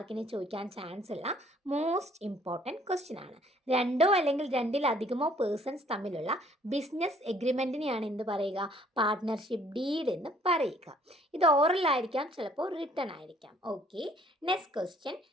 ചോദിക്കാൻ ചാൻസ് ഉള്ള മോസ്റ്റ് ഇമ്പോർട്ടൻറ്റ് ക്വസ്റ്റ്യൻ ആണ്. രണ്ടോ അല്ലെങ്കിൽ രണ്ടിലധികമോ പേഴ്സൺസ് തമ്മിലുള്ള ബിസിനസ് എഗ്രിമെൻറ്റിനെയാണ് എന്ത് പറയുക? പാർട്ട്ണർഷിപ്പ് ഡീഡ് എന്ന് പറയുക. ഇത് ഓറൽ ആയിരിക്കാം, ചിലപ്പോൾ റിട്ടൺ ആയിരിക്കാം. Okay, next question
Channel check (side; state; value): both; normal; correlation 0.60